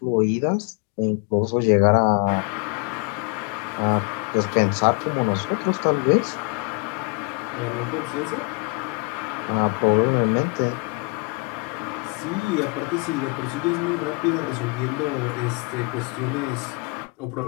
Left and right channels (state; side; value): quieter; right; 30.6 dB